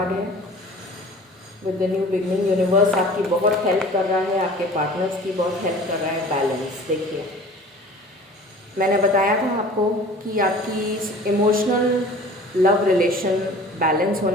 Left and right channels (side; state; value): both; normal; correlation 0.44